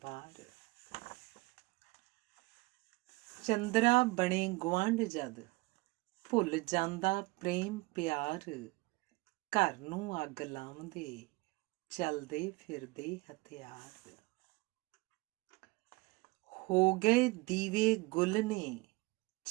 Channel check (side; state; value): left; quieter; 23.5 dB